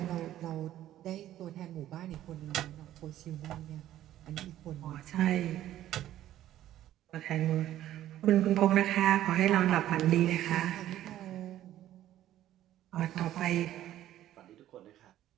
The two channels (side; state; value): left; quieter; 12.9 dB